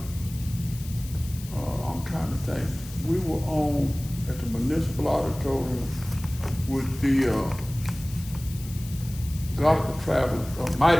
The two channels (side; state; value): left; noise; hiss, 16 dB below the sound